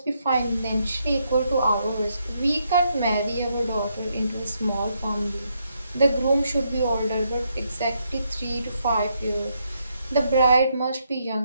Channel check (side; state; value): both; inverted; correlation -0.77